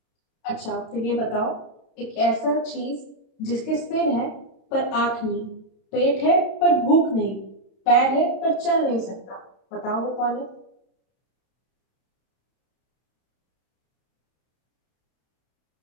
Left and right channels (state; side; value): late; right; 32 ms